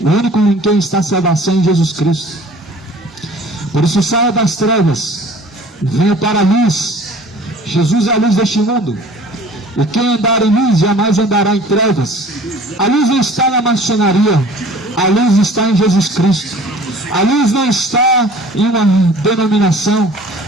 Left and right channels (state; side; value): normal; both; correlation 0.48